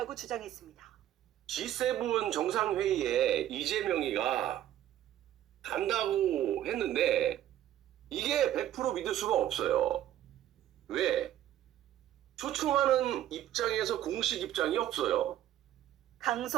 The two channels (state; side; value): quieter; left; 12.3 dB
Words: 주장했습니다. G7 정상회의에 이재명이가 간다고 했는데 이게 100% 믿을 수가 없어요. 왜? 초청하는 입장에서 공식 입장이 없어요.